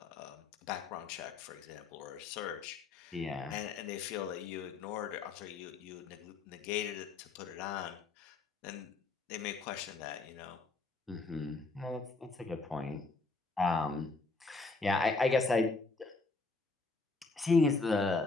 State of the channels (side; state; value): right; quieter; 3.7 dB